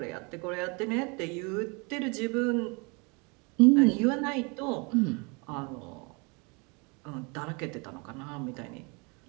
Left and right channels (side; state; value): left; quieter; 30.8 dB